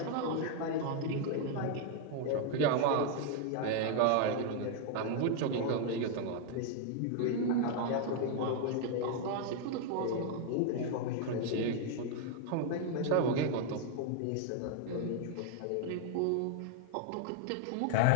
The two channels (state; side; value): different; both; correlation 0.00